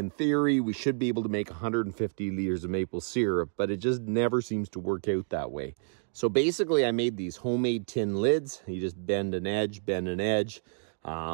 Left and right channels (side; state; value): left; silent; digital silence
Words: theory, we should be able to make 150 liters of maple syrup, but it just never seems to work out that way. So basically I made these homemade tin lids. You just bend an edge,